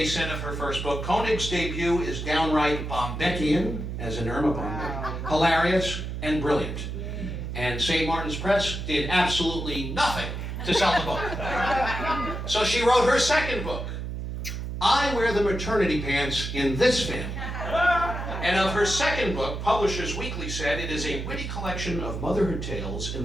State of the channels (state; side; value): noise; right; hum, 5 dB below the sound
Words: said of her first book, Konig's debut is downright Bombeckian, as in Irma Bombeck, hilarious and brilliant. And St. Martin's Press did absolutely nothing to sell the book. So she wrote her second book, I Wear the Maternity Pants in This Family. And of her second book, Publishers Weekly said it is a witty collection of motherhood tales in